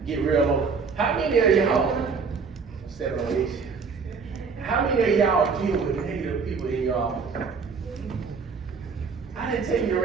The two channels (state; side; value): quieter; left; 5.2 dB